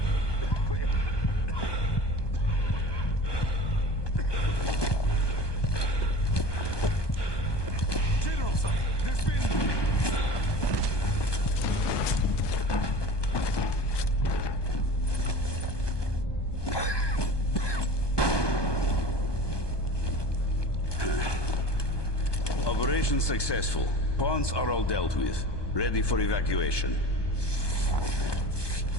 General, sir, there's been... Operation successful. Pawns are all dealt with. Ready for evacuation.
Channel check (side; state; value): right; late; 1.2 ms